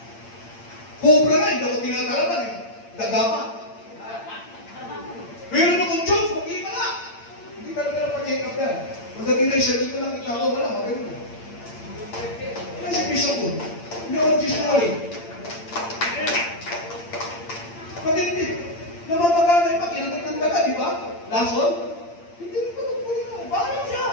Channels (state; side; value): late; right; 8.7 ms